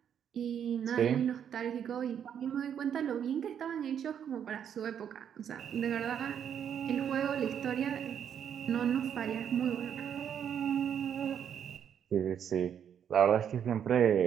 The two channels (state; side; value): quieter; left; 8.7 dB